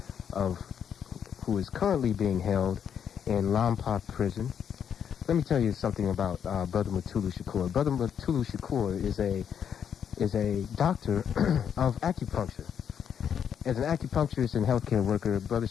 who is currently being held in Lompoc prison. Let me tell you something about brother Mutulu Shakur. Brother Mutulu Shakur is a doctor of acupuncture. As an acupuncturist and healthcare worker, Brother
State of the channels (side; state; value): right; quieter; 8.2 dB